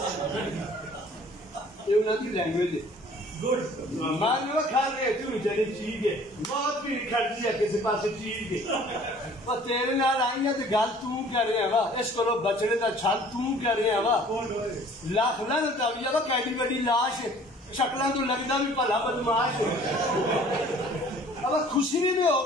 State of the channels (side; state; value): both; normal; correlation 0.52